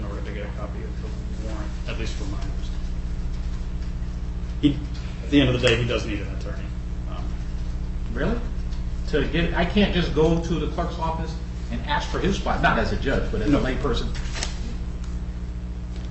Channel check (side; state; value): both; identical; correlation 1.00